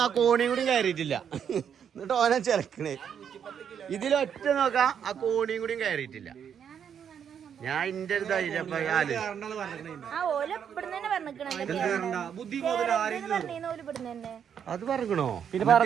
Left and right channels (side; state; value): left; quieter; 8.1 dB